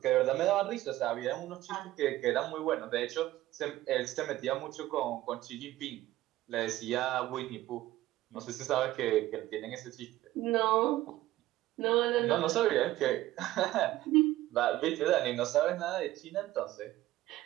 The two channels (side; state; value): left; quieter; 15.6 dB